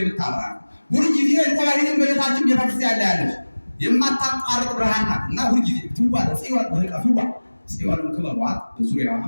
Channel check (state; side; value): inverted; both; correlation -1.00